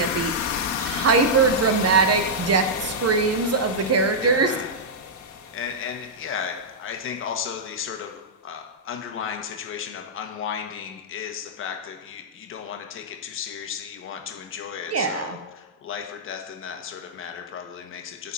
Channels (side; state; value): both; normal; correlation -0.09